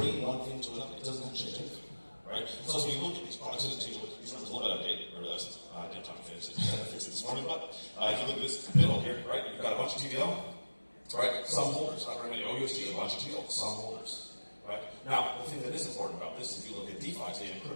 one thing to another. It doesn't change anything. Right? So as we look at these products, these numbers a little bit out of date, I realized I didn't have time to fix it this morning, but if you look at this middle here, right, you've got a bunch of TVL, right, some holders, not very many OUSG, a bunch of TL, some holders, right? Now, the thing that is important about this, if you look at DeFi today, a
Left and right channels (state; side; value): inverted; both; correlation -1.00